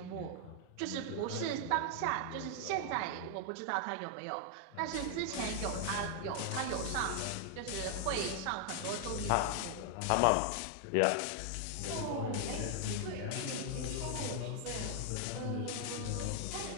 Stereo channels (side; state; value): both; different; correlation 0.00